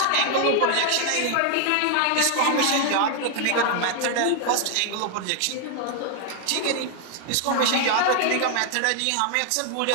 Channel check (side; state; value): both; different; correlation 0.00